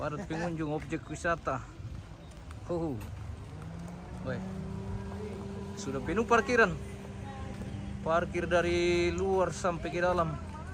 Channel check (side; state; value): both; identical; correlation 1.00